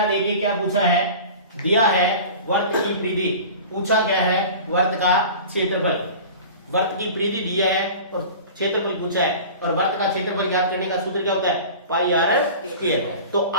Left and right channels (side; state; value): both; inverted; correlation -0.38